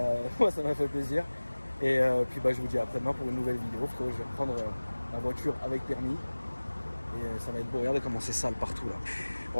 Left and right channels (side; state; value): both; inverted; correlation -1.00